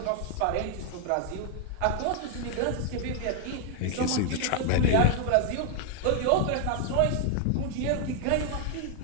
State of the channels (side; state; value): both; different; correlation 0.00